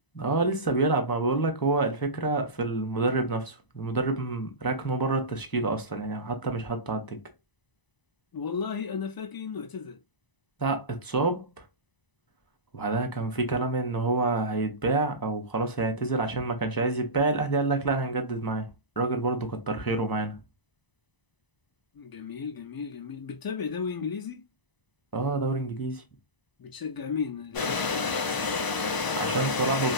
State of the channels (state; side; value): late; right; 1.0 ms